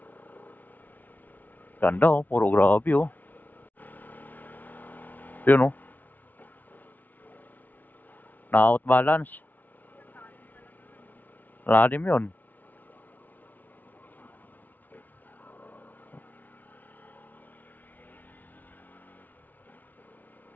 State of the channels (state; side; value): late; right; 0.083 ms